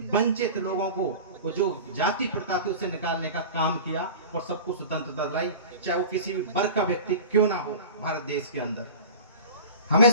वंचित लोगों को वो जो जाति प्रथा थी उससे निकालने का काम किया और सबको स्वतंत्रता दिलाई, चाहे वो किसी भी वर्ग का व्यक्ति क्यों ना हो भारत देश के अंदर। हमें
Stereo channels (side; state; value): both; inverted; correlation -0.35